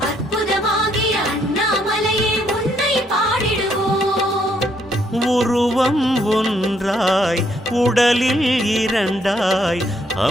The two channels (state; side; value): normal; both; correlation 0.71